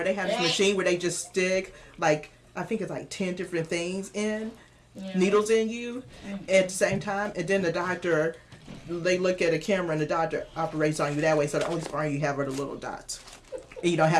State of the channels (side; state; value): both; identical; correlation 1.00